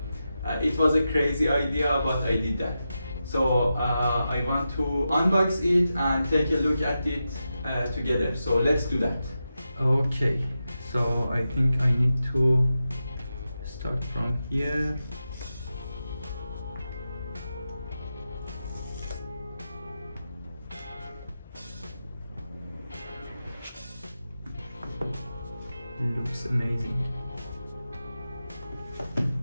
it was a crazy idea, but I did that. So I want to unbox it and take a look at it together. So let's do that. Okay, so I think I need to start from here. Looks amazing.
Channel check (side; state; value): both; inverted; correlation -0.90